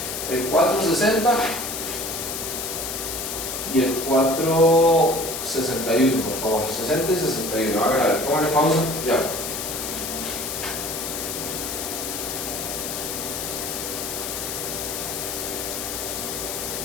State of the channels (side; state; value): left; noise; hiss, 5 dB below the sound